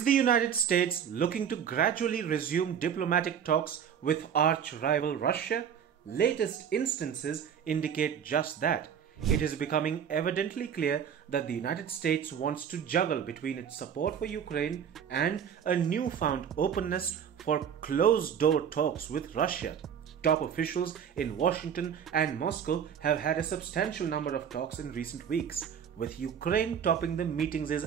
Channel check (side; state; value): left; quieter; 8.1 dB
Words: the United States looking to gradually resume diplomatic talks with arch-rival Russia? Latest instances indicate just that. It is becoming evidently clear that the United States wants to juggle between its support for Ukraine and a newfound openness for closed-door talks with Russia. Top officials in Washington and Moscow have had a substantial number of talks in recent weeks, with Ukraine topping the meeting's